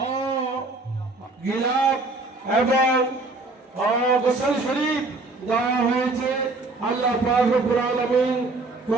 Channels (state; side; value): quieter; left; 3.3 dB